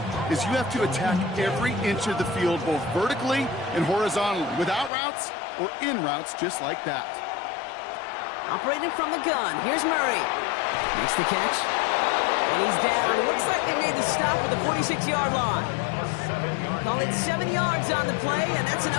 is you have to attack every inch of the field, both vertically and horizontally, without routes or in routes just like that. Operating from the gun, here's Murray. Makes the catch. And he's down. Looks like they made the stop at the 46-yard line. Call it 7 yards on the play, and that's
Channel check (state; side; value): drops out; right; at 4.9 s